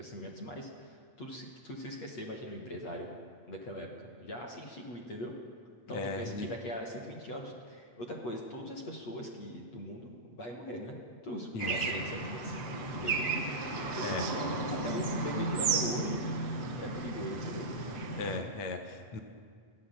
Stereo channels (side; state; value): right; late; 8.4 ms